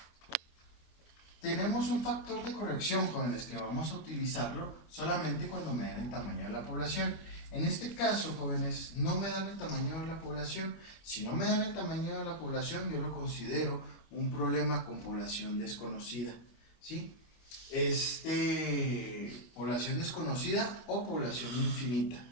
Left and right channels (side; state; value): right; late; 25 ms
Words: Tenemos un factor de corrección, jóvenes, que vamos a utilizarlo solamente cuando me den el tamaño de la población. En este caso, jóvenes, no me dan el tamaño de la población. Si no me dan el tamaño de la población, yo lo considero un problema con población desconocida, ¿sí? Población desconocida o población infinita,